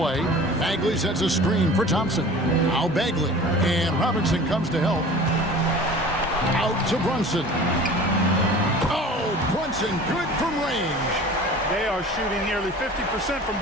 Bagley sets a screen for Thompson. Now Bagley. And Robinson comes to help. Out to Brunson. Oh, Brunson good from range. They are shooting nearly 50% from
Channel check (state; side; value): normal; both; correlation 0.42